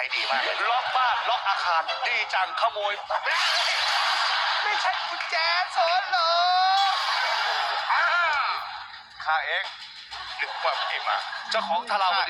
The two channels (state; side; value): identical; both; correlation 1.00